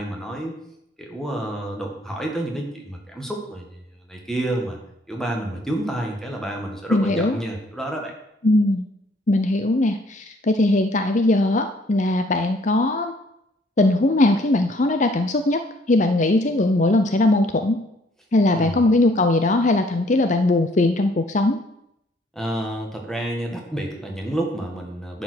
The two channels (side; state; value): both; normal; correlation 0.63